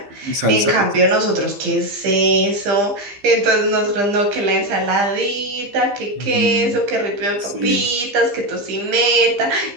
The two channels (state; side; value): late; left; 15 ms